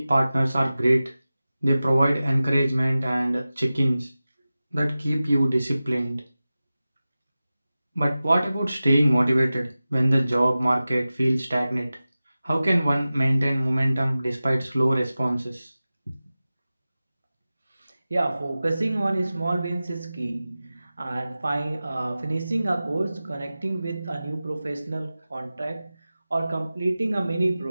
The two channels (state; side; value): inverted; both; correlation -0.96